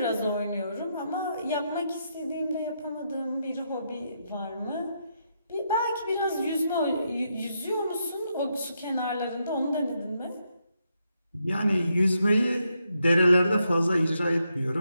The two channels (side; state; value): both; inverted; correlation -0.80